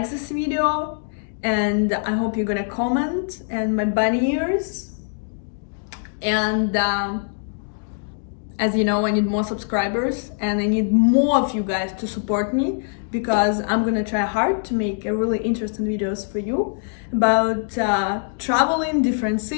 this video, and I hope you're gonna comment and my bunny ears. And as you know, I need more subscribers and I need more of you guys to support me, because I'm gonna try hard to make a really interesting videos for you about traveling different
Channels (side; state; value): right; silent; digital silence